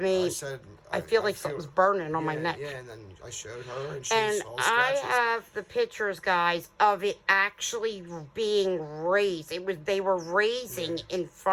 I said, I feel like something's burning on my neck. Yeah, and then I showed her, and she saw I scratches. have the pictures, guys, of it actually being raised. They were raising in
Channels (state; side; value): identical; both; correlation 1.00